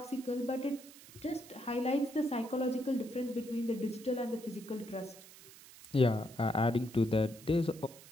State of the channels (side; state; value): right; noise; hiss, 19 dB below the sound